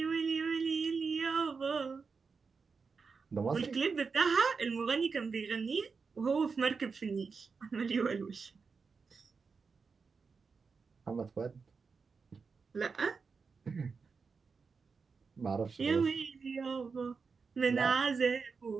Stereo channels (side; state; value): left; quieter; 5.1 dB